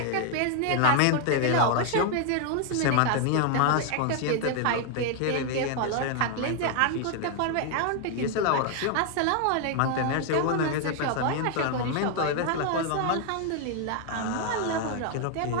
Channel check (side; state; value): both; different; correlation 0.00